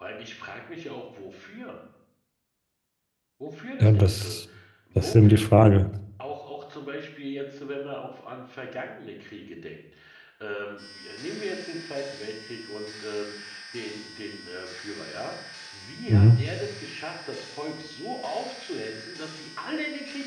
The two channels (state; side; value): identical; both; correlation 1.00